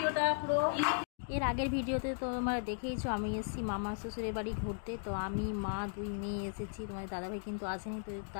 পুরো। এর আগের ভিডিওতে তো তোমরা দেখেইছো আমি এসেছি মামা শ্বশুরের বাড়ি ঘুরতে। তো আমি মা দুই মেয়ে এসেছি, তোমার দাদাভাই কিন্তু আসেনি। তো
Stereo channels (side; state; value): right; silent; digital silence